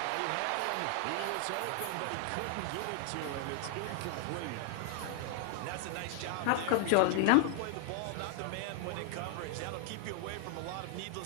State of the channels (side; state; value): both; different; correlation 0.00